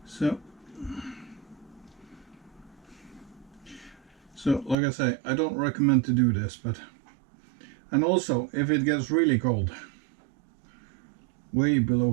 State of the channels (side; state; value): left; drops out; at 4.8 s